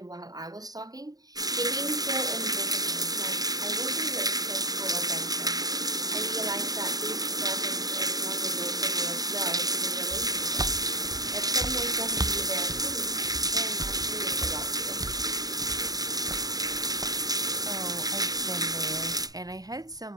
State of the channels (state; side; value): late; left; 0.18 ms